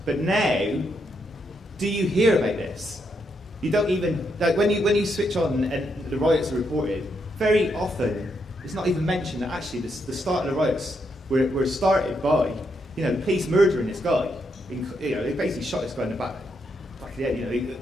But now, do you hear about this? You don't even, when you switch on and the riots are reported, very often it's not even mentioned that actually the start of the riots were started by, the police murdering this guy. They basically shot this guy in the back of the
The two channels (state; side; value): normal; both; correlation 0.79